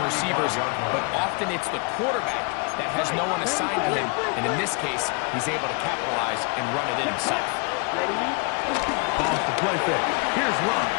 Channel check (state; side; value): quieter; right; 33.5 dB